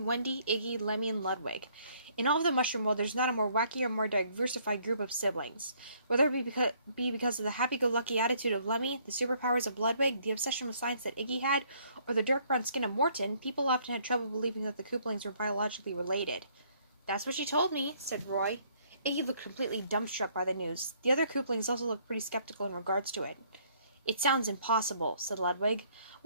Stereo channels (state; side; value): inverted; both; correlation -0.64